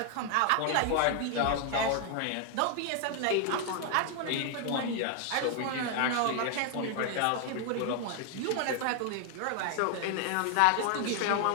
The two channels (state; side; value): different; both; correlation 0.00